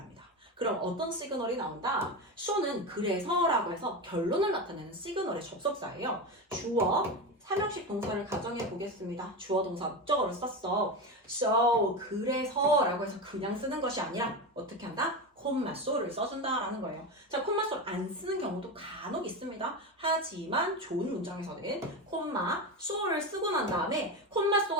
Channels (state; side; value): normal; both; correlation 0.19